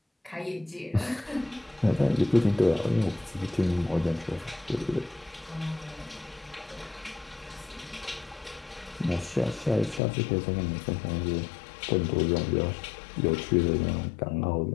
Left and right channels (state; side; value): drops out; right; at 10.0 s